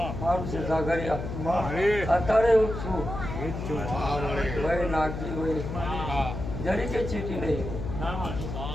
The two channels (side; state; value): left; noise; hum, 6 dB below the sound